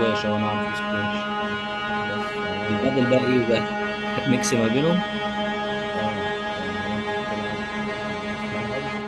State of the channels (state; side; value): identical; both; correlation 1.00